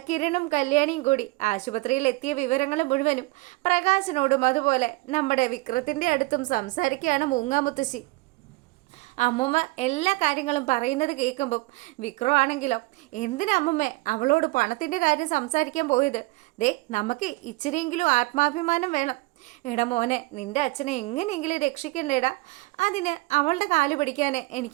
കിരണും കല്യാണിയും കൂടി ആശുപത്രിയിൽ എത്തിയ വിവരങ്ങൾ മുഴുവനും പ്രകാശനോടും അതുപോലെ നമ്മുടെ വിക്രത്തിൻ്റെ അടുത്തും സംസാരിക്കുകയാണ് മൂങ്ങാമുത്തശ്ശി. അമ്മൂമ്മ എല്ലാ കാര്യങ്ങളും പറയുന്നത് കേൾക്കുമ്പം വിക്രം ആണെങ്കിലോ, എന്തിനാ അമ്മമ്മേ അവളോട് പണത്തിൻ്റെ കാര്യം സംസാരിക്കാൻ പോയത്? ദേ നമുക്ക് ഇച്ചിരിയെങ്കിലും ആത്മാഭിമാനം വേണം. എടാ മോനെ, നിൻ്റെ അച്ഛനെ എങ്ങനെയെങ്കിലും രക്ഷിക്കണ്ടേടാ. അതിന് അവളുടെ കാല് പിടിക്കാനേ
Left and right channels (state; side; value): quieter; left; 22.8 dB